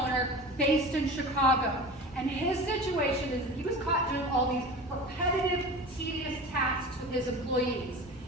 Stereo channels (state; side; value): normal; both; correlation 0.34